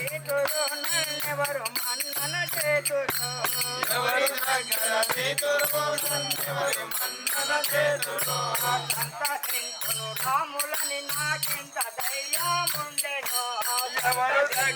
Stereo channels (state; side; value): identical; both; correlation 1.00